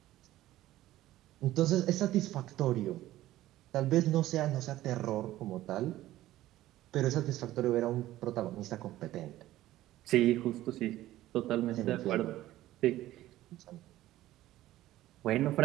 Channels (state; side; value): quieter; left; 15.0 dB